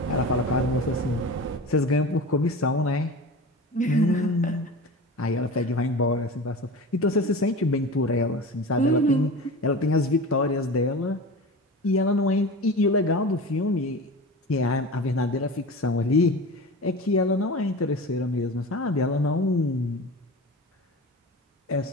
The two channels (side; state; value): both; normal; correlation 0.32